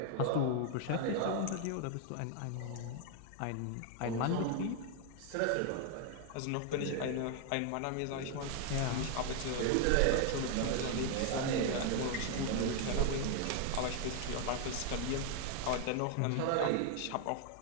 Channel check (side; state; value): both; different; correlation 0.00